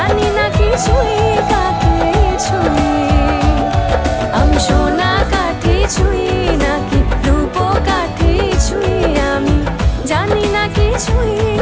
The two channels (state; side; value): identical; both; correlation 1.00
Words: না কি ছুঁই কাকে ছুঁই। আমি সোনা কাঠি ছুঁই নাকি রূপ কাঠি ছুঁই, আমি জানি না কি ছুঁই